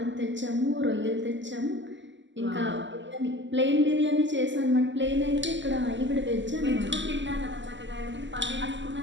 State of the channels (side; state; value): left; late; 0.54 ms